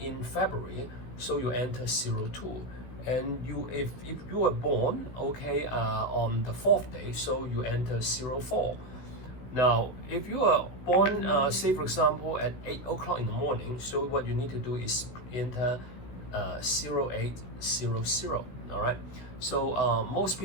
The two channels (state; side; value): late; right; 16 ms